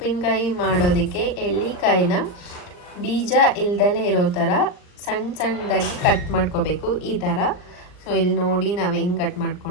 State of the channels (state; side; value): late; right; 39 ms